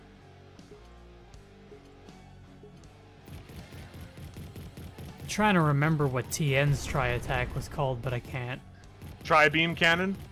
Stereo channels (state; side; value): identical; both; correlation 1.00